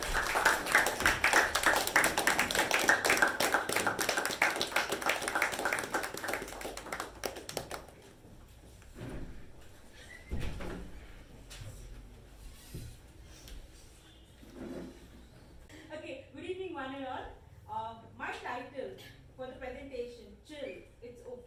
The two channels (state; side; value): identical; both; correlation 1.00